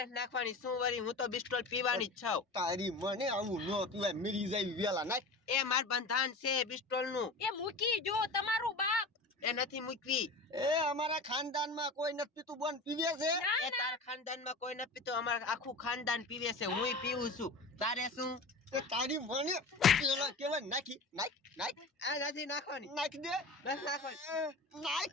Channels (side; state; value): right; quieter; 3.1 dB